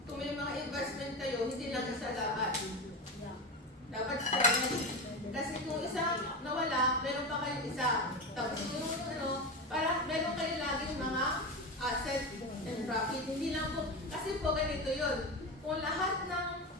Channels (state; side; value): normal; both; correlation 0.21